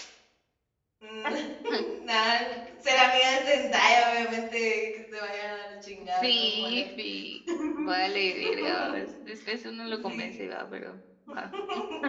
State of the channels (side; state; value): both; identical; correlation 1.00